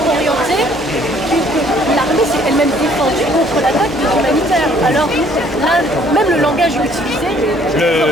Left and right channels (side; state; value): both; normal; correlation 0.60